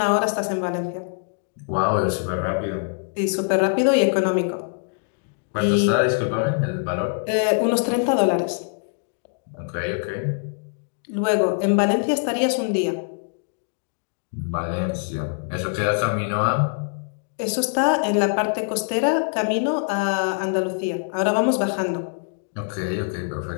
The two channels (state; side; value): silent; right; digital silence